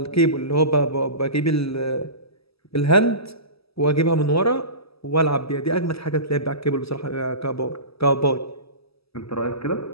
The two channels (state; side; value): late; right; 0.77 ms